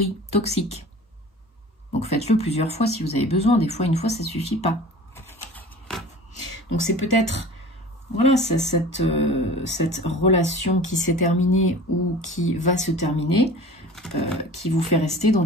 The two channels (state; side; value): normal; both; correlation 0.41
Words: toxiques. Donc faites-le plusieurs fois si vous avez besoin, des fois, une fois, ça suffit pas. Donc c'est peut-être... Voilà, cette relation qui s'est terminée ou qui va se terminer, qui vous fait rester dans